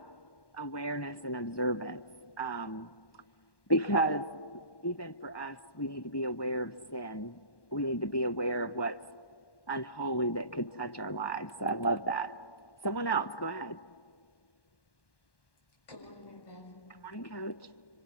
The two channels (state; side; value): late; right; 1.1 ms